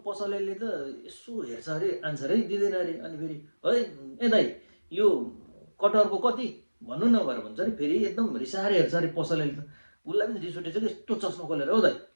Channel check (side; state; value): both; inverted; correlation -1.00